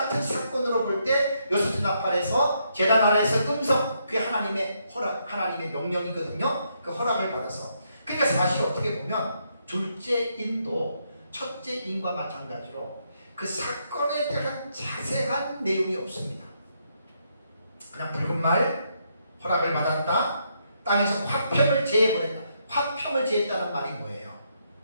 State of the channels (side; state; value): both; inverted; correlation -0.77